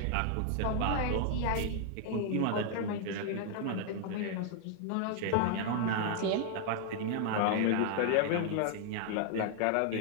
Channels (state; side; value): different; both; correlation 0.00